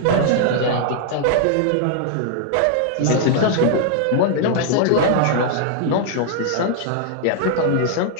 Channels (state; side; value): different; both; correlation 0.00